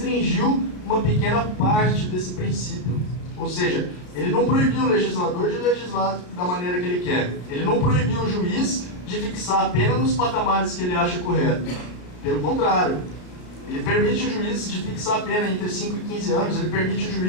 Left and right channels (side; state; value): right; late; 33 ms